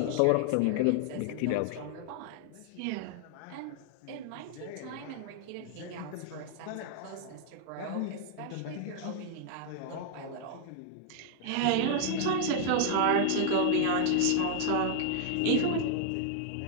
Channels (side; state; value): both; different; correlation -0.01